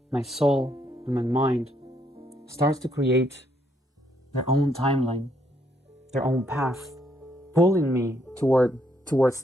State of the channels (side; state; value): both; normal; correlation 0.72